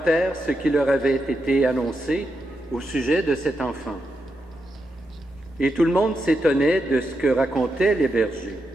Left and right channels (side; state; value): both; normal; correlation 0.85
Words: ce qui leur avait été annoncé au sujet de cet enfant. Et tout le monde s'étonnait de ce que racontaient les bergers.